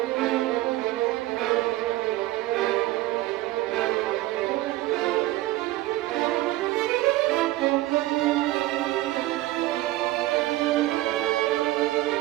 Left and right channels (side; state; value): left; quieter; 17.1 dB